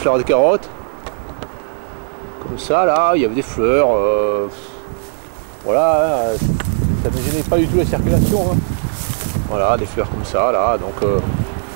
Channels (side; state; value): left; silent; digital silence